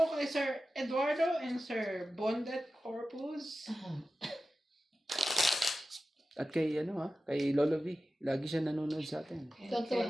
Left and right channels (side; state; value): both; normal; correlation 0.94